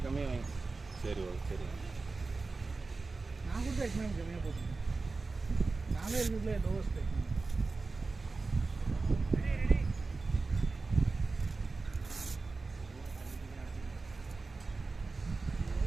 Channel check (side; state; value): left; quieter; 3.8 dB